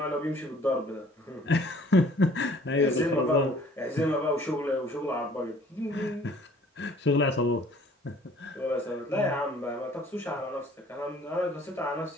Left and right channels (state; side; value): normal; both; correlation 0.55